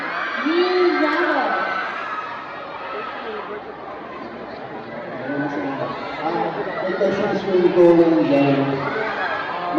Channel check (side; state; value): both; identical; correlation 1.00